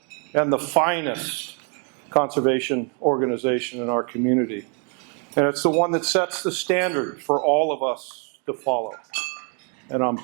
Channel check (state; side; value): quieter; left; 37.4 dB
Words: and the finest conservation organization in our community, and it's the one that sets the standard for all of us to follow. And I'm